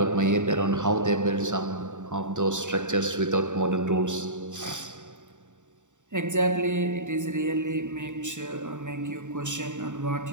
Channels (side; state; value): left; late; 0.86 ms